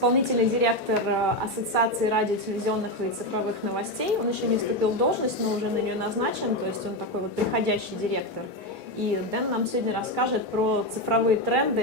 директор Ассоциации радио, телевизионных и цифровых новостей. Он еще не вступил в должность, но уже на нее назначен, то есть он такой вот приходящий директор. И Дэн нам сегодня расскажет про цифровые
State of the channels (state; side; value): normal; both; correlation 0.11